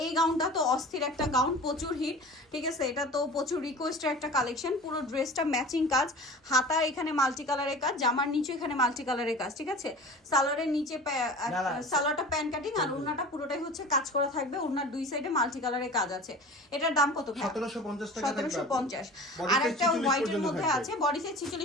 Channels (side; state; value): both; normal; correlation 0.38